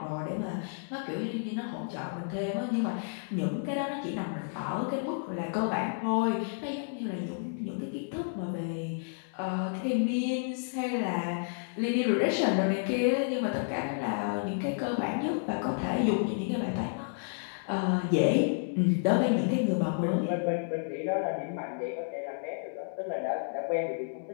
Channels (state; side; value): silent; right; digital silence